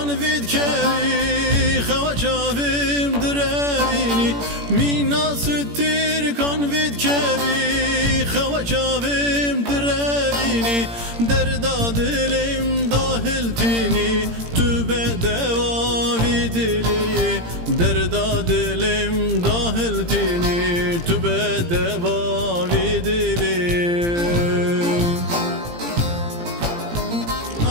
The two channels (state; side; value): late; left; 17 ms